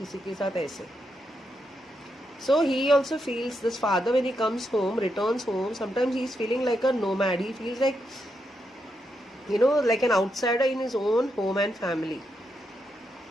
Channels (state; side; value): normal; both; correlation 0.82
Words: के साथ ऐसे. So he also feels, this father when he comes home, returns home, sometimes he is feeling like a nomad. He feels like, like an outsider in his own home and family.